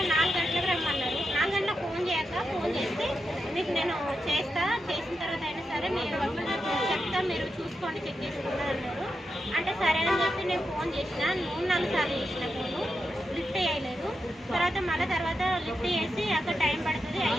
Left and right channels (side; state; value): both; normal; correlation 0.87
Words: 4 గంటలకు రమ్మన్నారు. 4 గంటలకు ఫోన్ చేస్తే మీకు నేను చేసిన తర్వాత అయినా సరే మీరు చెప్తా, మీరు చూసుకోండి, చెక్ చేసుకున్నారు అన్నారు. అంటే సరే అని చెప్పి నేను ఫోన్ చేసిన, 3-4 సార్లు చేసిన, ఫోను లిఫ్ట్ చేయలేదు. తర్వాత లిఫ్ట్ చేసి అక్కడ టైం పడుతుంది,